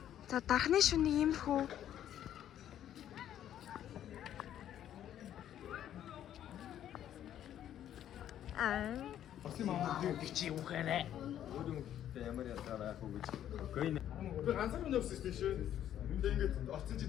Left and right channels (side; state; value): right; quieter; 10.9 dB